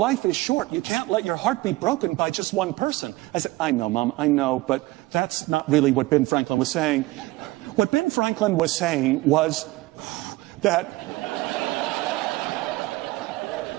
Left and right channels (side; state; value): left; quieter; 20.0 dB